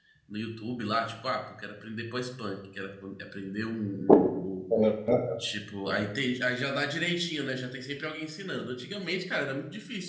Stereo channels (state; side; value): identical; both; correlation 1.00